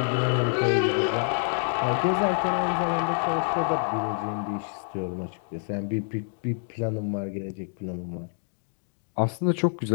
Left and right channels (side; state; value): right; silent; 60 dB below the other